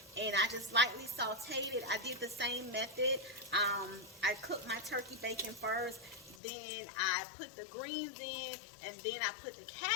and I just lightly sauteed it. I did the same method. I cooked my turkey bacon first, then I put the greens in, and then I put the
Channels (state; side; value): drops out; right; at 6.4 s